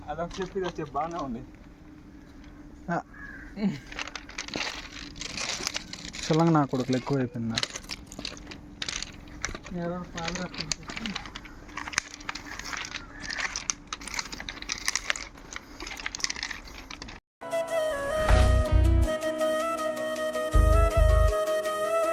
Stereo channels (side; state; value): both; identical; correlation 1.00